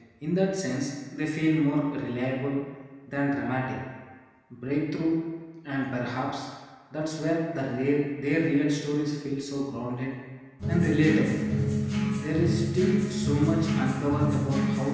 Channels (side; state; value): both; identical; correlation 1.00